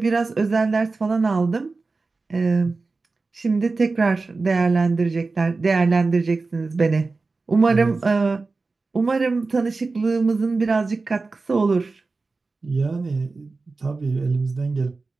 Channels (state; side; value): quieter; left; 3.8 dB